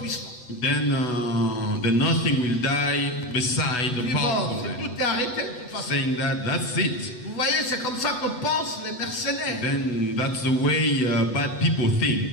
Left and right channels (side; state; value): right; late; 8.1 ms